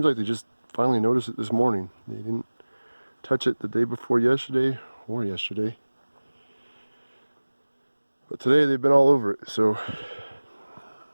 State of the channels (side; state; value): both; inverted; correlation -1.00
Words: like they just finally noticed it this morning. They didn't touch it the day before yesterday or yesterday. But today they've been all over it, so